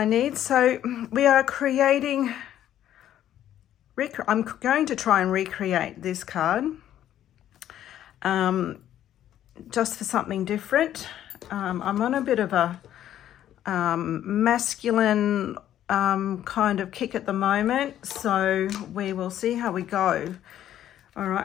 need. So we are creating, I'm going to try and recreate this card just for something different. I'm on a bit of a masculine kind of kick at the moment, so we will see how we go. All right,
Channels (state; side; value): quieter; right; 11.5 dB